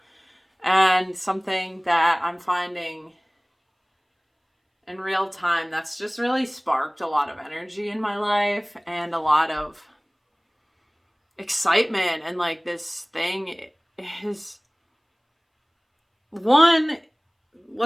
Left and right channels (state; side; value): identical; both; correlation 1.00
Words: And something that I'm finding in real time that's just really sparked a lot of energy in my life and a lot of excitement. And like, this thing is one,